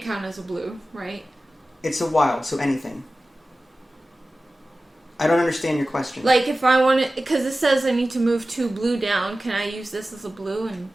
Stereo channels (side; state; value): both; normal; correlation 0.96